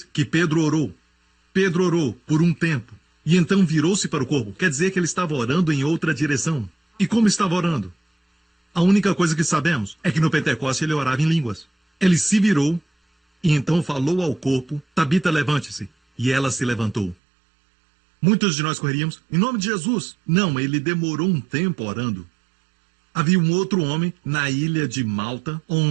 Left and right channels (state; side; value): drops out; left; at 17.2 s